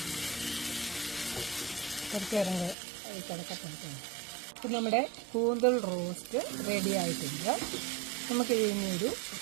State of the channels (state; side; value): drops out; left; at 2.8 s